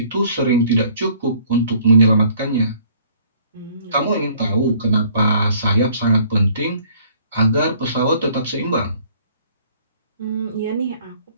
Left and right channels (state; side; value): inverted; both; correlation -0.57